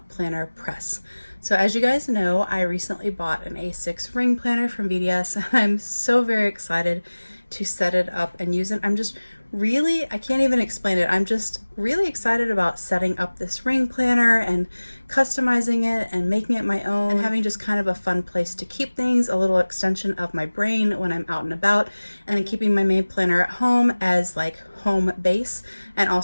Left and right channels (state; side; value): inverted; both; correlation -1.00